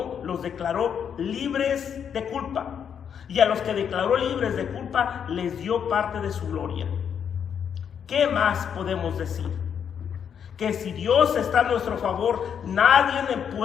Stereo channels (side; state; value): right; quieter; 7.9 dB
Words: los declaró libres de culpa, y a los que declaró libres de culpa les dio parte de su gloria. ¿Qué más podemos decir? Que si Dios está a nuestro favor, nadie